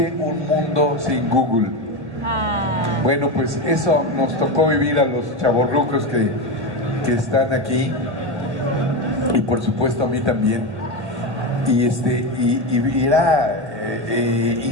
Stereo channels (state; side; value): late; left; 1.9 ms